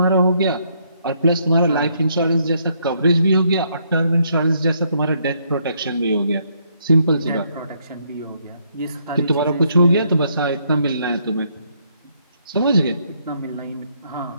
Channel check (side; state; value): both; inverted; correlation -0.72